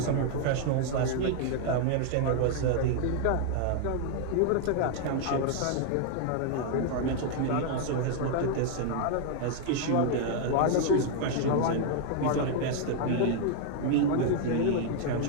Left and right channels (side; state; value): both; different; correlation 0.00